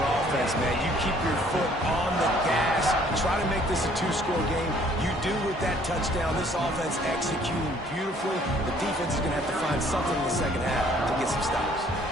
offense, man. You keep your foot on the gas. Try to make this a 2-score game. You do with that touchdown. This offense executing beautifully. The defense is going to have to find something in the 2nd half to get some stops.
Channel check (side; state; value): both; normal; correlation 0.59